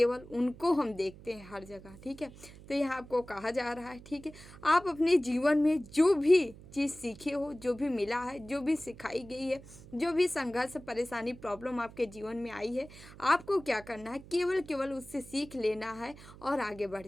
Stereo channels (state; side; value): noise; right; hum, 18 dB below the sound